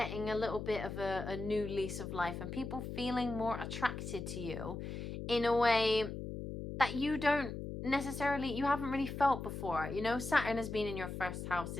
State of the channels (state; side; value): noise; left; hum, 6 dB below the sound